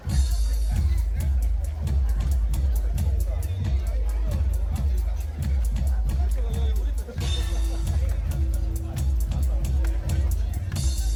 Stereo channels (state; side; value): identical; both; correlation 1.00